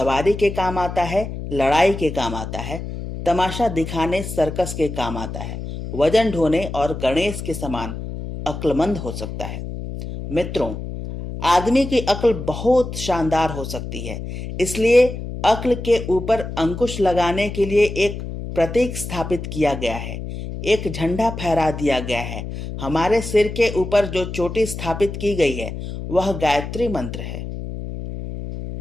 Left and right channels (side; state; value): left; noise; hum, 7 dB below the sound